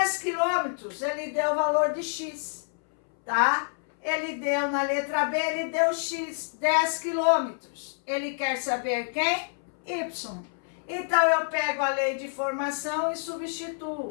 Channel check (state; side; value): silent; right; 60 dB below the other